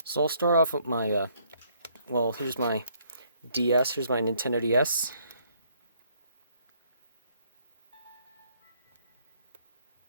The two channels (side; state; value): both; inverted; correlation -0.66